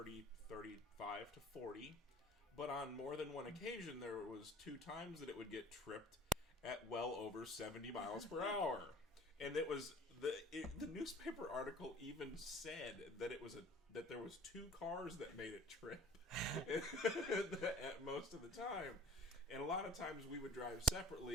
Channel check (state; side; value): normal; both; correlation 0.49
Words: 35 to 40. But on more than one occasion, there was 2 times that it would get tripped at well over 70 miles per hour. And it was the newspaper article even said that that there was 2 cars that made it trip at most of the time. And a lot of times we would drive